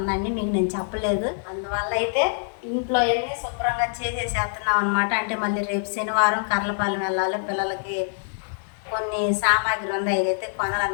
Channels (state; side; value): silent; right; digital silence